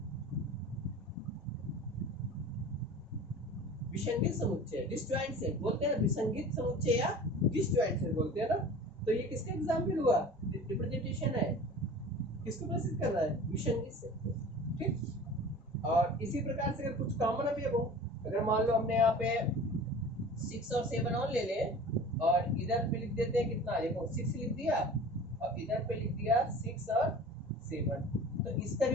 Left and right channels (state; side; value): normal; both; correlation 0.40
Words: विसंगत समुच्चय, डिसजॉइंट सेट बोलते हैं ना, विसंगत समुच्चय या डिसजॉइंट सेट बोलते हैं ना। तो ये किसका एग्जांपल हुआ, रिप्रेजेंटेशन है, किसको प्रस्तुत कर रहा है, विसंगत सेट को। ठीक, और इसी प्रकार से अगर कुछ कॉमन अवयव हो, अगर मान लो हमने यहाँ पे 6 और 7 और ले ले और इधर पे लिख देते हैं कितना, देखो 6 लिख दिया और इधर पे लिख दिया 6 और 7, तो इसका